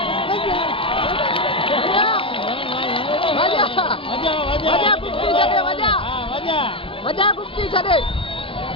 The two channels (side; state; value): right; late; 0.26 ms